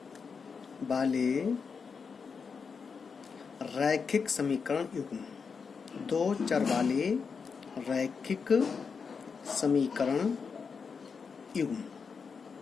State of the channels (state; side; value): quieter; right; 5.6 dB